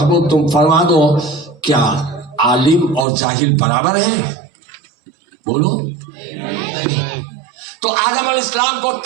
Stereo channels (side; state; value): left; drops out; at 3.1 s